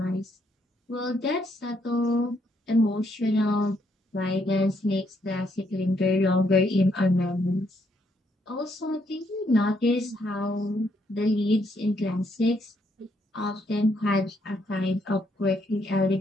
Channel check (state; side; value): normal; both; correlation 0.73